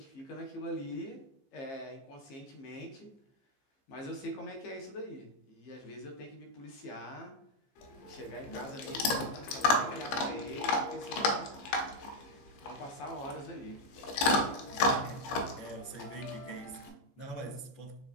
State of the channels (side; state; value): right; late; 15 ms